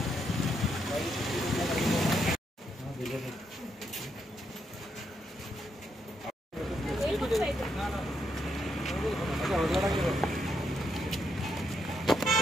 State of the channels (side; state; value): both; normal; correlation 0.79